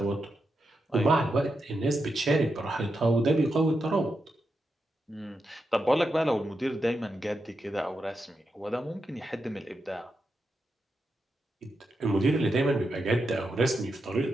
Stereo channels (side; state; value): both; normal; correlation 0.86